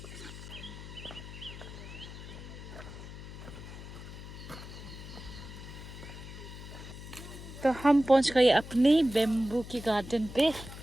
तो हम पहुंच गए अपने बेम्बू की गार्डन पे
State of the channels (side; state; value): left; noise; hum, 12 dB below the sound